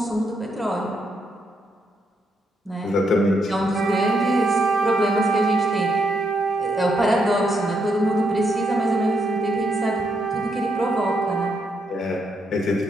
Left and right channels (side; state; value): both; normal; correlation 0.78